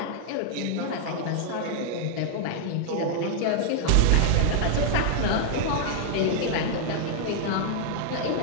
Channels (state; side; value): different; both; correlation 0.00